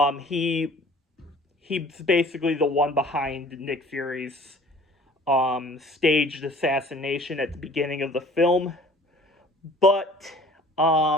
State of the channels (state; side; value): normal; both; correlation 0.50